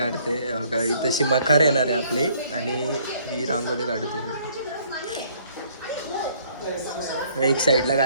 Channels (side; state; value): both; inverted; correlation -0.62